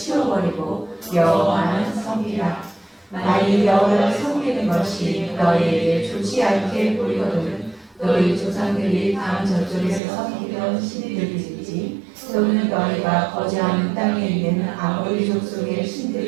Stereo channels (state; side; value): drops out; left; at 10.0 s